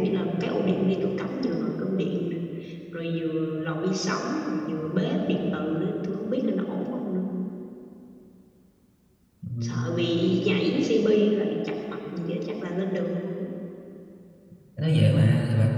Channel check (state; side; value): identical; both; correlation 1.00